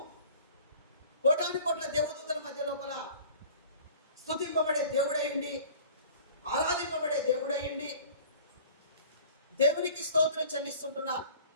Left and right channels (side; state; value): both; inverted; correlation -0.47